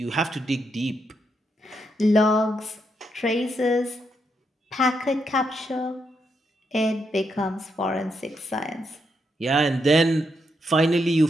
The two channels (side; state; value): both; normal; correlation 0.80